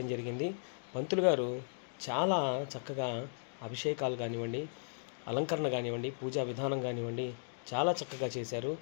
జరిగింది. పంతులు గారు చాలా చక్కగా అభిషేకాలు కానివ్వండి, అలంకరణ కానివ్వండి, పూజా విధానం కానివ్వండి చాలా చక్కగా చేశారు.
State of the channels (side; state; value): right; silent; digital silence